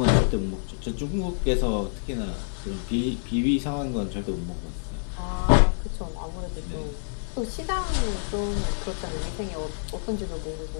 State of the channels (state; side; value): silent; right; digital silence